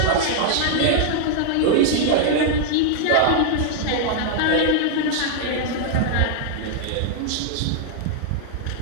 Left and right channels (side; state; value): both; different; correlation -0.01